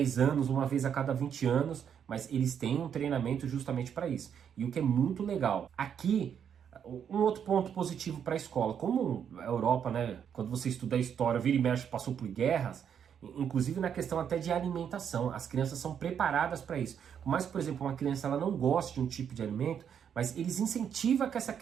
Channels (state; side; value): quieter; left; 8.2 dB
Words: anos, uma vez a cada 20 anos, mas eles têm um treinamento justamente para isso. E o que é muito legal, aqui, um outro ponto positivo para a escola, como a Europa, né, quando você estuda a história, vira e mexe, passou por guerras, inclusive na questão até de alimentação, as crianças são preparadas para isso. Por mais que, por exemplo, uma criança ela não goste de um tipo de alimento, mas eles incentivam que essa